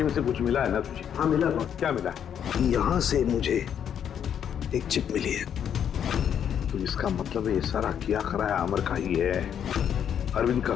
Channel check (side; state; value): right; quieter; 8.8 dB